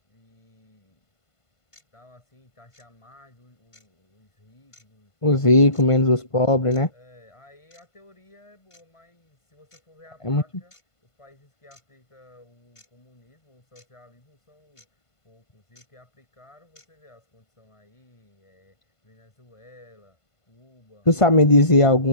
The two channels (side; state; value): right; late; 1.5 ms